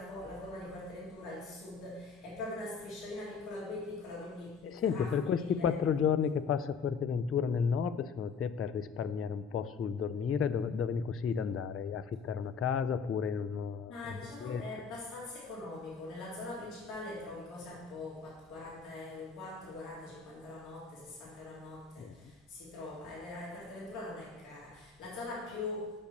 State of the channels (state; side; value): quieter; right; 5.8 dB